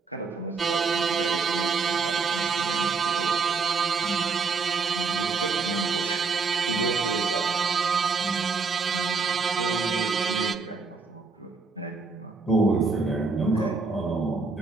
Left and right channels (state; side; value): quieter; left; 4.6 dB